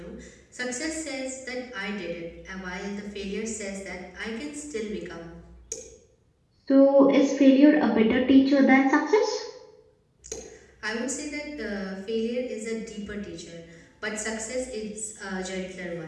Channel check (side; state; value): both; identical; correlation 1.00